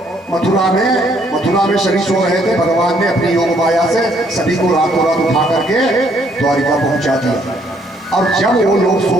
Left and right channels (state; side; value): normal; both; correlation 0.67